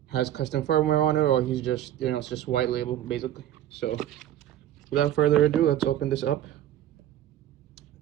has custom firmware on it or he's just, it's just white label basically. So without further ado, let's open this up.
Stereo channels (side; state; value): left; quieter; 11.9 dB